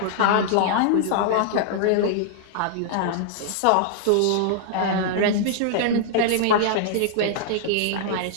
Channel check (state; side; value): different; both; correlation -0.01